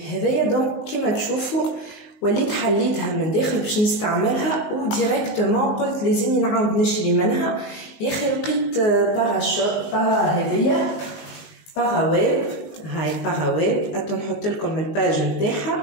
هذايا. دونك كيما تشوفوا وليت حليتها من داخل باش نستعملها وديريكتومون قلت لازمني نعاود نشري منها. يا اخي لقيت هذيا باغاويب هاي باغاويب اتو نحط لكم الباج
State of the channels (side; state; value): right; late; 19 ms